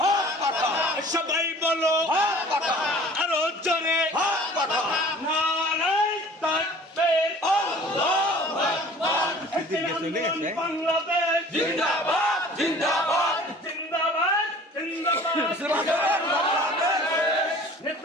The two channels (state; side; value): normal; both; correlation 0.47